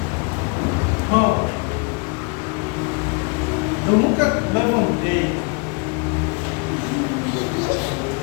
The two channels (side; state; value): right; quieter; 33.2 dB